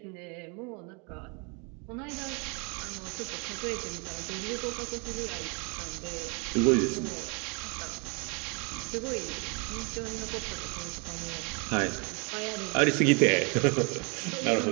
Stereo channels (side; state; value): left; quieter; 33.2 dB